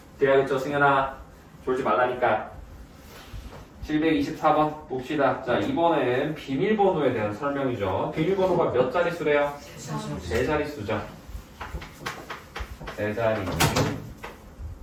돼야겠죠. 승현아 졸지 말라니까. 724번 봅시다. 자, 이번엔 비밀번호에 대한 설명이죠. 비밀번호가 몇 자릿수래요? 세 자릿수죠. 세 자리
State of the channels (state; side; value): identical; both; correlation 1.00